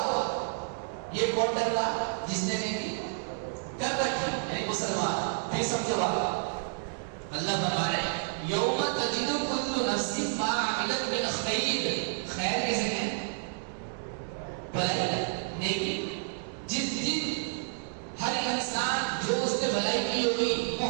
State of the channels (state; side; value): silent; left; digital silence